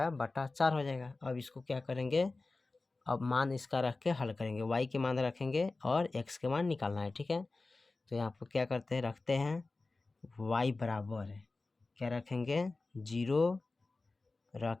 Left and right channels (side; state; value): right; quieter; 3.5 dB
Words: बटा 4 हो जाएगा। अब इसको क्या करेंगे, अब मान इसका रख के हल करेंगे, y के मान रखेंगे और x के मान निकालना है। ठीक है, तो यहाँ पर क्या करते हैं, रखते हैं y बराबर क्या रखेंगे, 0